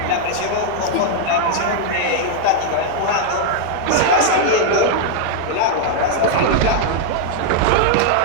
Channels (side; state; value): both; different; correlation -0.01